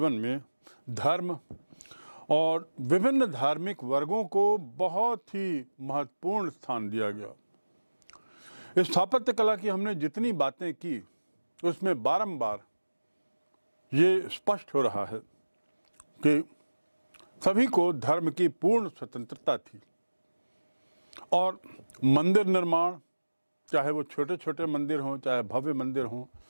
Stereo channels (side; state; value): both; inverted; correlation -1.00